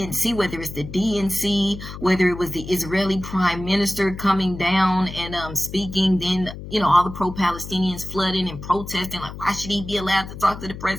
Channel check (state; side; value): noise; left; hum, 11 dB below the sound